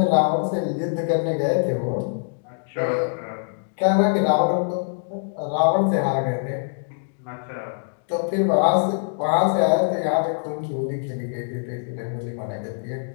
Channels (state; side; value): silent; right; digital silence